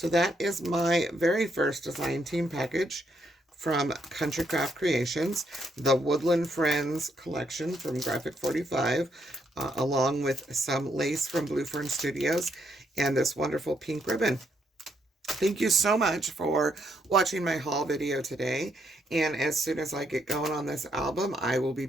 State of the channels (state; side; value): normal; both; correlation 0.75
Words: that is my very first design team package from Country Craft Creations, the Woodland Friends collection from Graphic 45, along with some lace from Blue Fern Studios, and this wonderful pink ribbon. Thank you so much for watching my haul video today. And as soon as I get going on this album, I will be